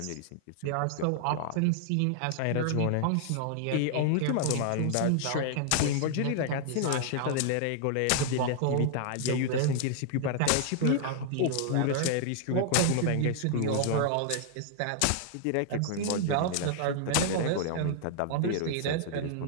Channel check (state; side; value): different; both; correlation 0.00